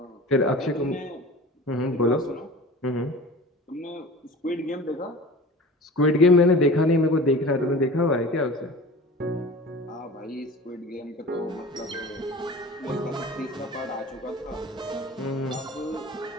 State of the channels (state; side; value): normal; both; correlation 0.39